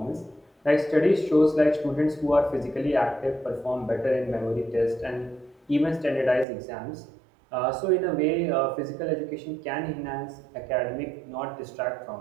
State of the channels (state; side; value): drops out; left; at 6.5 s